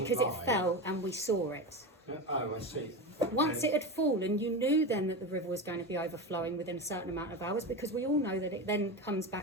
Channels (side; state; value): both; normal; correlation 0.21